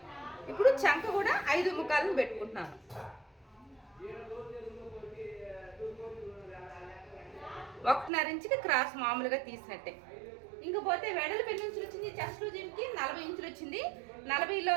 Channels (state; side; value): drops out; left; at 8.1 s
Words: ఇప్పుడు చంక కూడా 5.25 పెట్టుకుంటున్నాను. ఒకటిన్నర ఇంచుకి క్రాస్ మామూలుగా తీసినట్టే. ఇంకపోతే వెడల్పు ఎన్ని ఇంచులు వచ్చింది? చెస్ట్ లూజింగ్కి 40 ఇంచులు వచ్చింది. 40లో